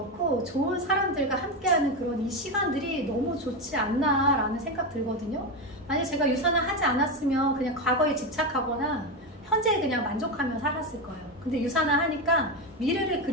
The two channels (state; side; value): normal; both; correlation 0.14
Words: 좋은 사람들과 함께하는 그런 이 시간들이 너무 좋지 않나라는 생각 들거든요. 만약 제가 유산화 하지 않았으면 그냥 과거에 집착하거나 현재에 그냥 만족하며 살았을 거예요. 근데 유산화 하니까 미래를